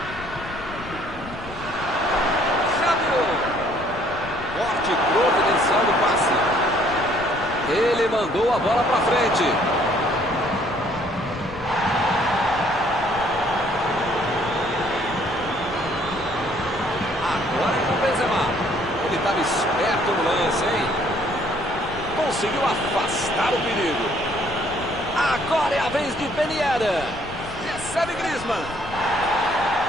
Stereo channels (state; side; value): noise; left; rumble, 15 dB below the sound